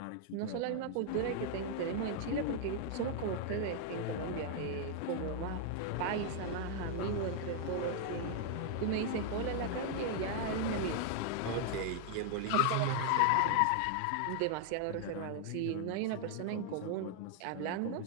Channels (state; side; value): different; both; correlation 0.00